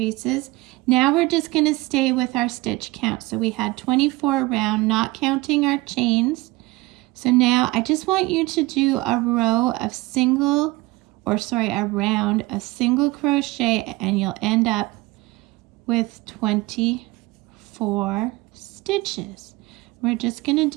Now we're just going to stay with our stitch count. So we had 24 around, not counting our chains. So now I just want you to do a round of single crochet, and you'll end up with 24 stitches. We're just going to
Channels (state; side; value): quieter; left; 21.2 dB